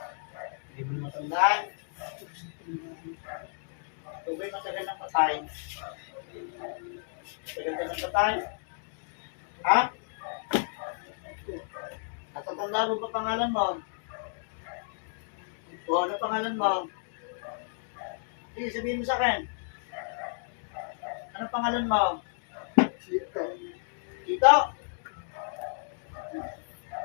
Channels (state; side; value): silent; right; digital silence